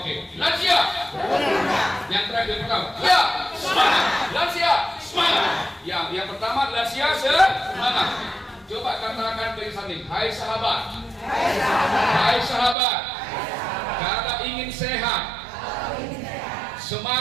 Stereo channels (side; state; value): left; drops out; at 12.8 s